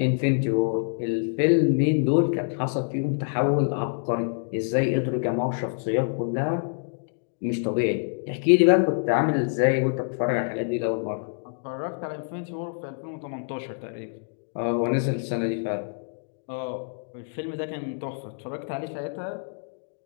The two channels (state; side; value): silent; right; digital silence